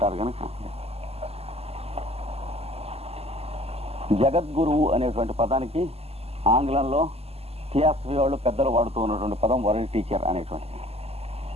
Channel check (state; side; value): late; left; 0.29 ms